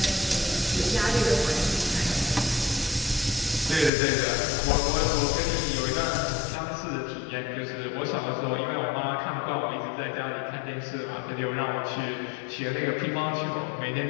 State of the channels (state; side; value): drops out; right; at 3.9 s